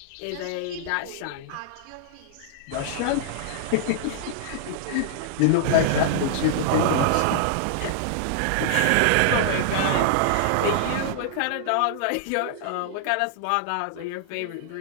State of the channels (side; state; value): both; different; correlation -0.01